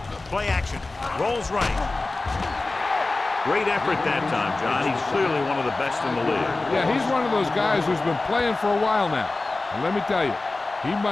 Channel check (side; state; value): right; quieter; 3.3 dB